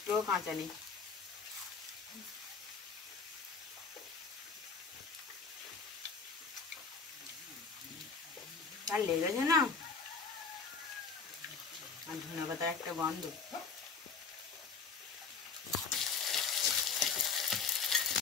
কাঁচা নেই। আর লেগেছে না, আর ধনেপাতার একটা গন্ধ।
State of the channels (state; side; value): quieter; right; 5.3 dB